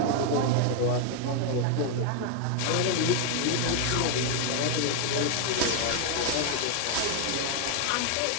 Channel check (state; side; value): different; both; correlation 0.00